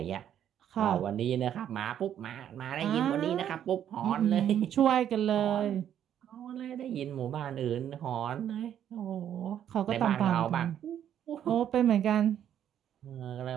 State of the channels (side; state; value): left; quieter; 10.0 dB